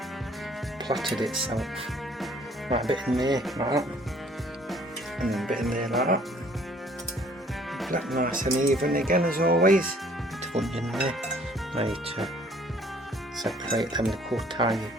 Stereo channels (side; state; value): both; normal; correlation 0.58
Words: Plotted itself. Right, a bit in there, like that. And then a bit in there, like that. That nice and even again as always. Put in there. Now you need to separate them little tiny